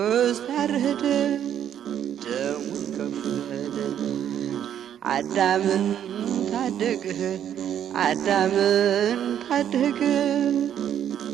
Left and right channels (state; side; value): quieter; left; 9.9 dB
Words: ታረደ ደሙን ከፈለና አዳምን ታደገ አዳምን ታደገ